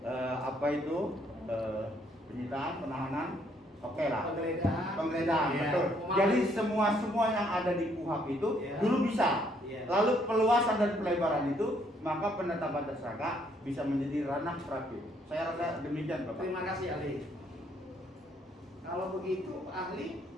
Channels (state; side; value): normal; both; correlation 0.68